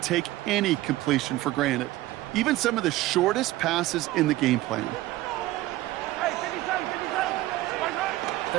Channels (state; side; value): quieter; left; 16.8 dB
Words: take any completion for granted. Even some of the shortest passes in the game plan.